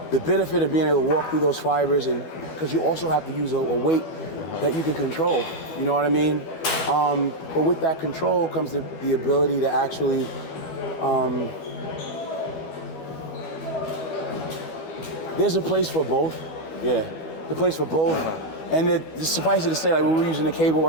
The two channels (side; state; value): right; late; 12 ms